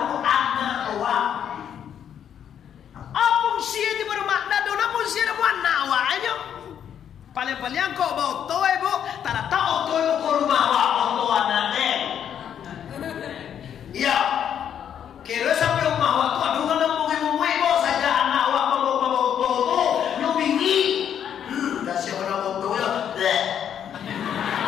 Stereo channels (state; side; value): quieter; right; 9.0 dB